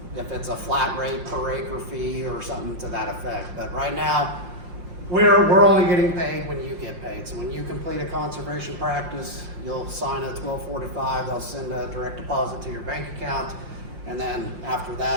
if it's a flat rate per acre fee or something to that effect. But right now, we're only getting paid when you get paid. So when you complete a conservation practice, you'll sign a 1245, they'll send a direct deposit to your bank account, and then after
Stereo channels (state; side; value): late; left; 5.7 ms